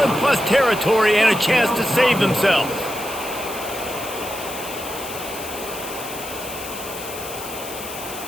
in plus territory and a chance to save themselves.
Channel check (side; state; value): left; noise; hiss, 11 dB below the sound